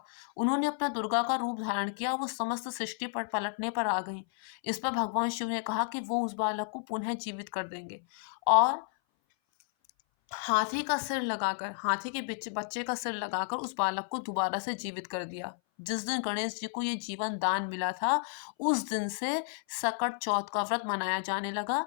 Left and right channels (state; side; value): silent; right; 56 dB below the other